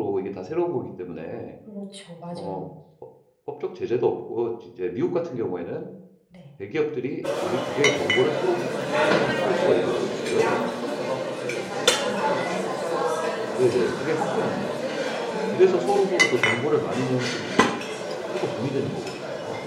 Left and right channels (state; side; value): identical; both; correlation 1.00